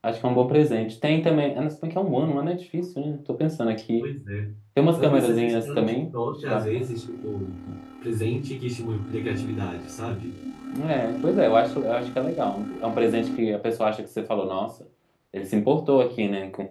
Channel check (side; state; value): both; identical; correlation 1.00